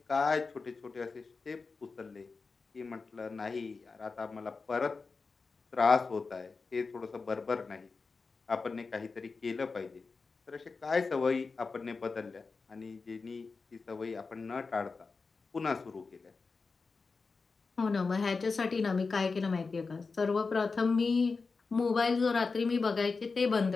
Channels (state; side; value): quieter; right; 4.4 dB